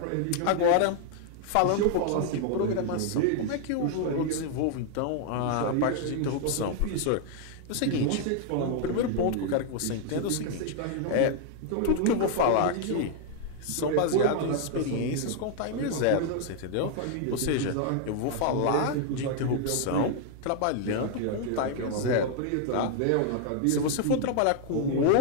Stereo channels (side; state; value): both; different; correlation 0.00